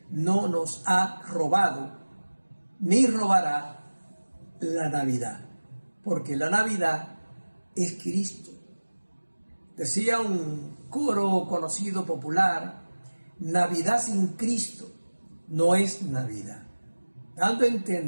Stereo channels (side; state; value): both; inverted; correlation -1.00